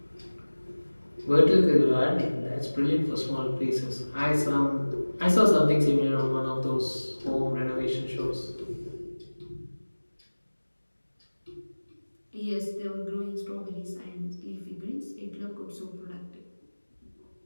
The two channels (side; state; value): both; inverted; correlation -1.00